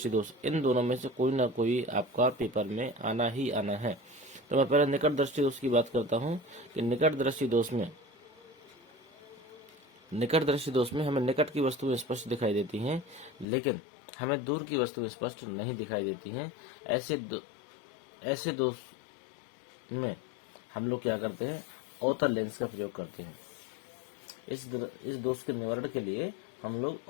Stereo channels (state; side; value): drops out; right; at 13.5 s